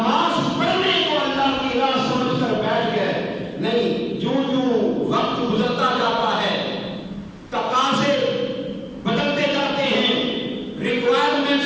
پڑھنے کو اللہ کی راہ سمجھ کر بیٹھ گئے۔ نہیں، جو وقت گزرتا جاتا ہے، تقاضے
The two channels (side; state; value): both; identical; correlation 1.00